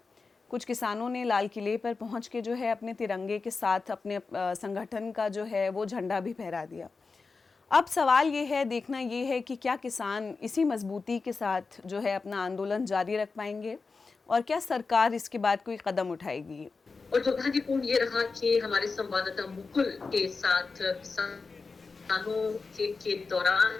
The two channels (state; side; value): quieter; right; 4.3 dB